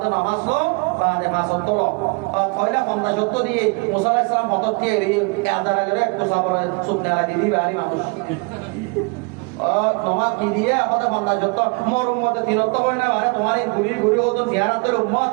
তো নামাজ লো বাদে মাসত তো পয়লা 50 সত্য দিয়ে মুসা আলাইহিস সালাম হতত দিয়ে আজারা করে কুসাবরে সুবনালা দিদি বাড়ি মানুষ তোমার কি দিয়ে আমাদের 50 সত্য মরুম মতে তিনত্ব কই না মানে তোমার এই ঘুরি হতো জিয়ারাতের উম্মত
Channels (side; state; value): left; quieter; 31.2 dB